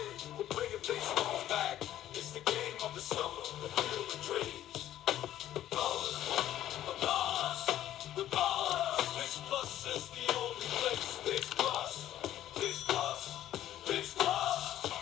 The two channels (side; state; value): right; quieter; 12.5 dB